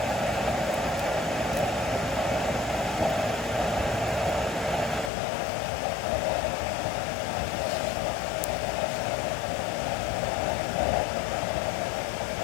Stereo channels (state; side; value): drops out; right; at 5.1 s